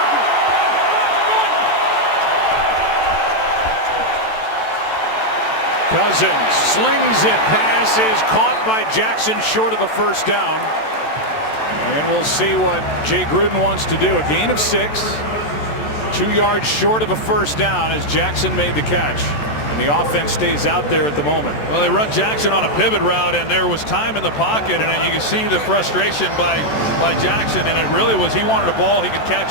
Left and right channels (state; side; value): late; right; 14 ms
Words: Cousins slings it, pass is caught by Jackson short of a first down. And we'll see what Jay Gruden wants to do. A gain of 6, 2 yards short of a first down as Jackson made the catch. And the offense stays out there at the moment. Well, they run Jackson on a pivot route, and there was time in the pocket, and you can see the frustration by Jackson, and it really was he wanted a ball he could